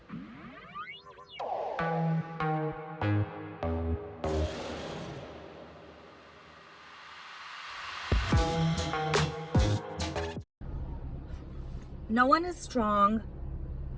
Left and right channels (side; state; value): both; identical; correlation 1.00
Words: one is strong